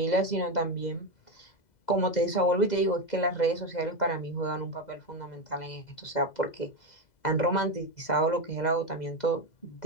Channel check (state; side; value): late; right; 2.0 ms